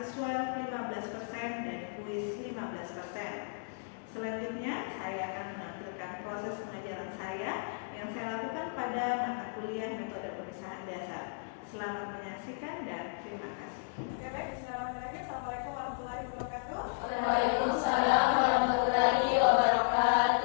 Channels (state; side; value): silent; right; digital silence